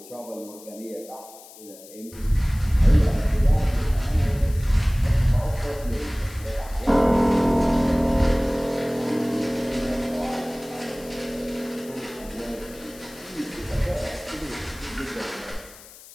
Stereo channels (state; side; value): noise; left; hiss, 20 dB below the sound